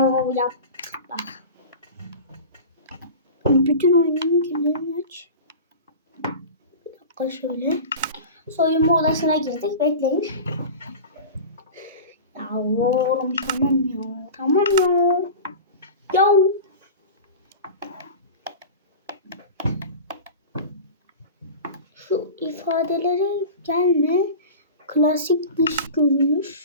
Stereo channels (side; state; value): both; inverted; correlation -0.33